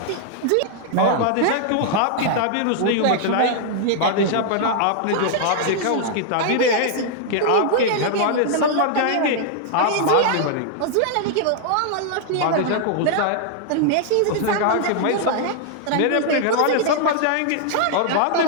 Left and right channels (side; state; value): both; different; correlation -0.01